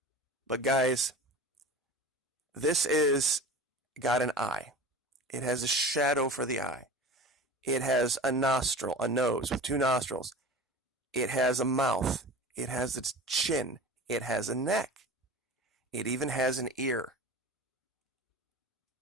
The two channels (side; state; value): both; normal; correlation 0.36